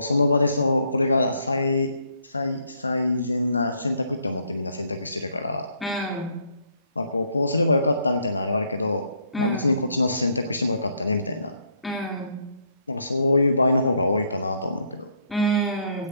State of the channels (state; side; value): inverted; both; correlation -0.69